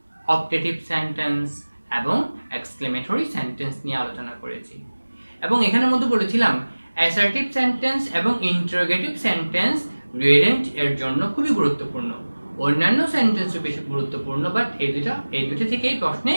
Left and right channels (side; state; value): both; inverted; correlation -1.00